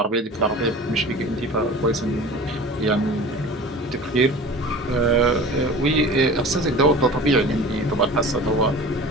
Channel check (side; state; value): both; normal; correlation 0.39